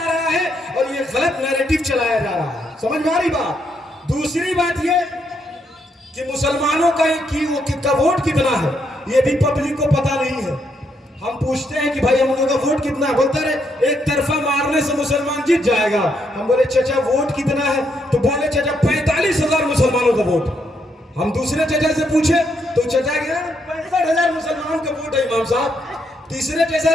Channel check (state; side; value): normal; both; correlation 0.76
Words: रहा है और ये गलत नैरेटिव चलाया जा रहा है। समझ में आ रही बात? दूसरी बात ये कि मुसलमानों का वोट कितना है ये भी पब्लिक को पता नहीं है। हम पूछते हैं कि भाई हम लोगों का वोट कितना है, बोलते रहे एक तरफा मारने से मुसलमान जीत जाएगा। हम बोले चाचा वोट कितना है, तो बोले चाचा 45,000 मुसलमानों का वोट। हम दूसरे चाचा से पूछे तो चाचा गया 65,000 मुसलमानों का वोट है इमाम साहब। तीसरे